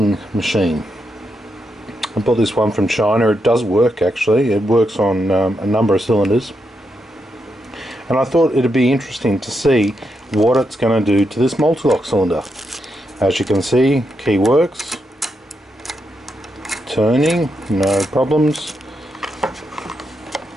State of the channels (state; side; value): normal; both; correlation 0.83